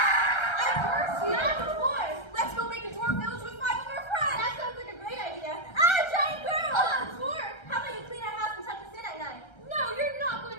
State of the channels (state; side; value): late; right; 1.3 ms